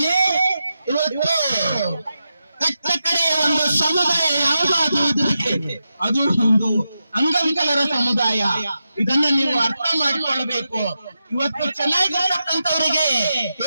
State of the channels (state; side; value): inverted; both; correlation -0.89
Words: ಇವತ್ತು ಕಟ್ಟ ಕಡೆಯ ಒಂದು ಸಮುದಾಯ ಯಾವುದಾದ್ರೂ ಇದ್ರೆ ಅದು ಒಂದು ಅಂಗವಿಕಲರ ಸಮುದಾಯ. ಇದನ್ನ ನೀವು ಅರ್ಥ ಮಾಡಿಕೊಳ್ಳಬೇಕು. ಇವತ್ತು ಚೆನ್ನಾಗಿರ್ತಕ್ಕಂಥವರಿಗೆ